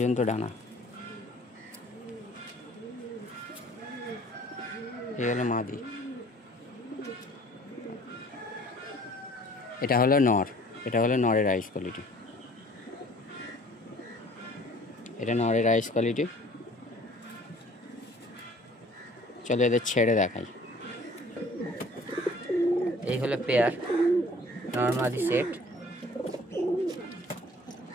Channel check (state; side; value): normal; both; correlation 0.52